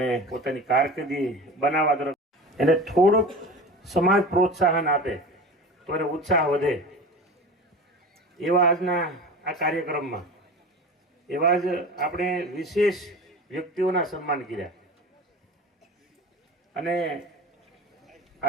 પોતાની કારકિર્દી બનાવવા તરફ એને થોડુંક સમાજ પ્રોત્સાહન આપે તો એને ઉત્સાહ વધે. એવા આજના આ કાર્યક્રમમાં એવા જ આપણે વિશેષ વ્યક્તિઓના સન્માન કર્યા. અને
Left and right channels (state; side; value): normal; both; correlation 0.34